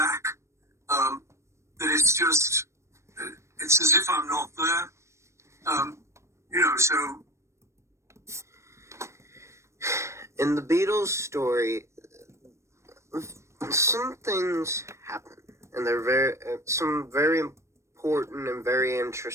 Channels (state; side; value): late; left; 0.14 ms